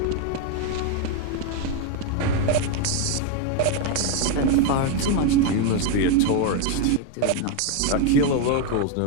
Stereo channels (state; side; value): different; both; correlation 0.01